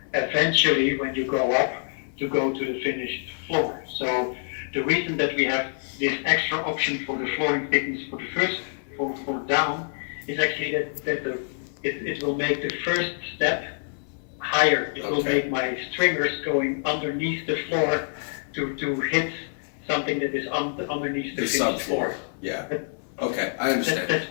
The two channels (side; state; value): right; silent; 61 dB below the other